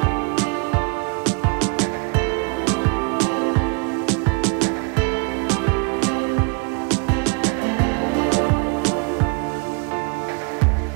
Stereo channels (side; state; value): left; quieter; 33.2 dB